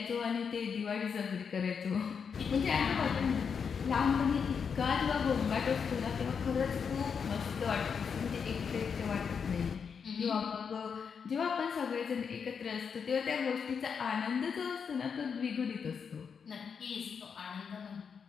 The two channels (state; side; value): quieter; right; 6.4 dB